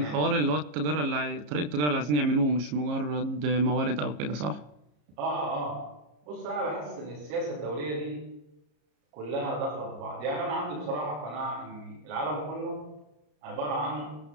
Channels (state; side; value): late; left; 34 ms